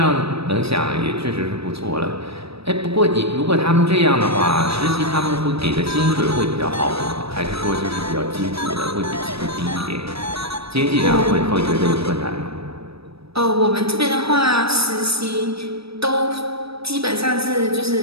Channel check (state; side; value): late; left; 0.77 ms